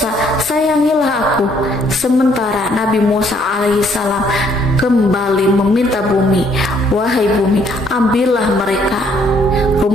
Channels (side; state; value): both; normal; correlation 0.66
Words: sayangilah aku." Sementara Nabi Musa alaihissalam kembali meminta bumi, "Wahai bumi, ambillah mereka."